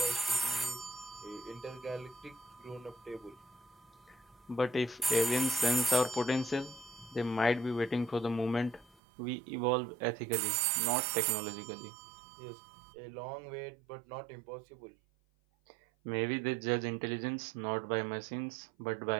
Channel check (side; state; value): left; drops out; at 9.0 s